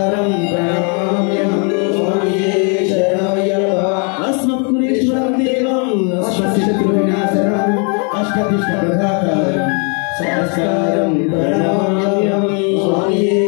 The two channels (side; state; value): right; quieter; 37.9 dB